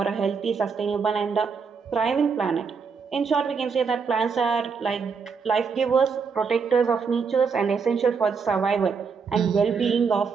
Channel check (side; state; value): left; quieter; 5.6 dB